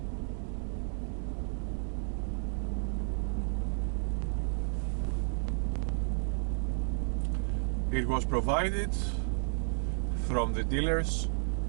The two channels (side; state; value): left; silent; 56 dB below the other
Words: It was provided from the dealers